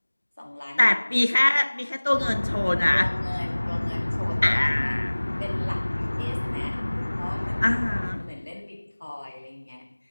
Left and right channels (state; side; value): inverted; both; correlation -1.00